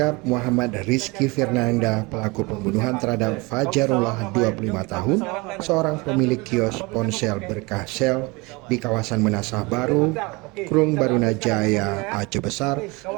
Muhammad Rizky Fernanda, pelaku pembunuhan terhadap Fajarullah 25 tahun, seorang pemilik kios ponsel berkah sel di kawasan Menasah Baru, Krung Barunajaya, Aceh Besar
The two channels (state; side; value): quieter; left; 25.5 dB